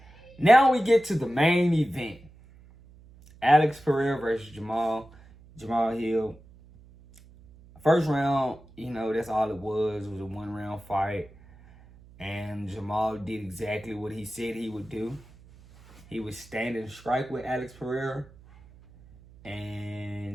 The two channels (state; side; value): noise; right; hum, 23 dB below the sound